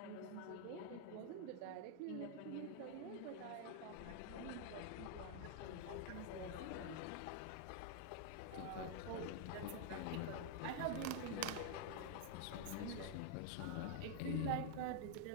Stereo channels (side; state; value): both; different; correlation 0.00